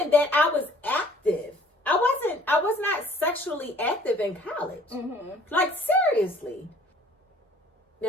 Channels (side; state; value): both; normal; correlation 0.55